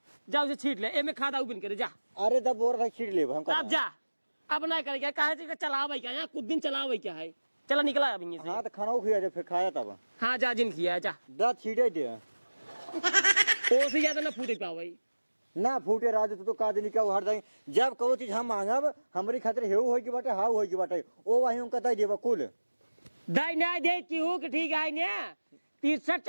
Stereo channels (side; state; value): both; inverted; correlation -1.00